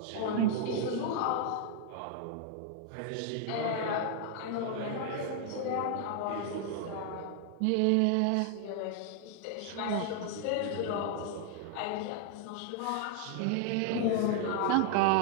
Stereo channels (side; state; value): both; different; correlation 0.00